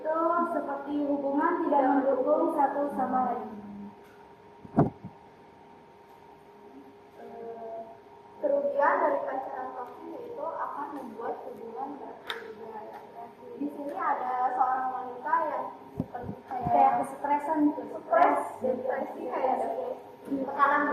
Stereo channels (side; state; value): both; identical; correlation 1.00